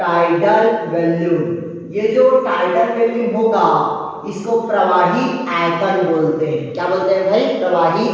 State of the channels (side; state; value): both; identical; correlation 1.00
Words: वॉल्यूम। ये जो टाइडल वॉल्यूम होगा इसको प्रवाही आयतन बोलते हैं। क्या बोलते हैं भाई? प्रवाही